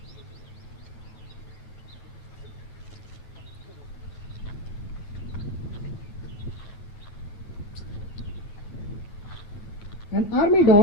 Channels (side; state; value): right; late; 9.5 ms